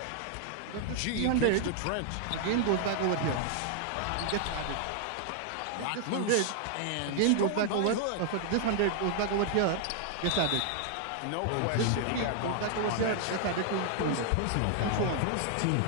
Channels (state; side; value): different; both; correlation 0.00